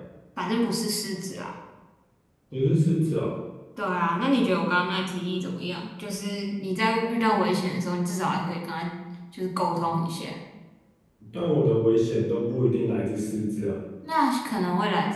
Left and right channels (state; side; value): identical; both; correlation 1.00